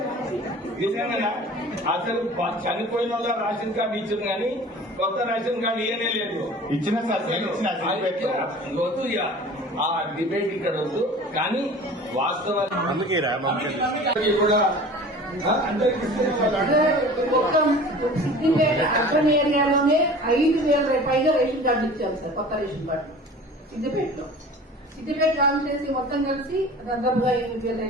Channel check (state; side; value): normal; both; correlation 0.42